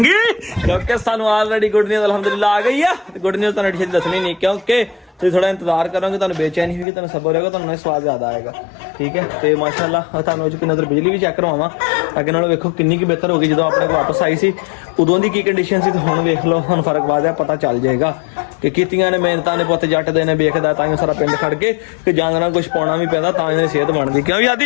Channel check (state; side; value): drops out; right; at 6.9 s